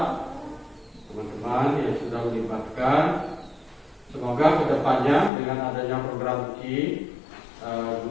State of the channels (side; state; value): right; drops out; at 5.3 s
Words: teman-teman yang sudah melibatkan. Semoga kedepannya dengan adanya program ini,